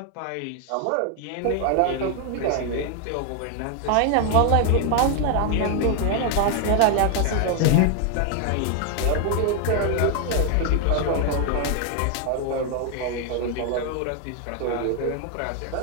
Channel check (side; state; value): both; different; correlation 0.01